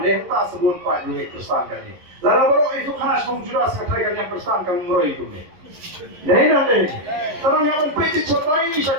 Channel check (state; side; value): late; left; 11 ms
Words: deh tak sebut pak yung Kristan kan ni. Lalu baru itu kanas mong juras katay kan yang Kristan kan meroy itu ni. Deh. Karena yang peja cotai sa